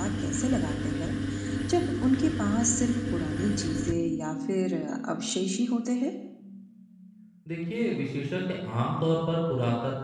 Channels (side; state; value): both; identical; correlation 1.00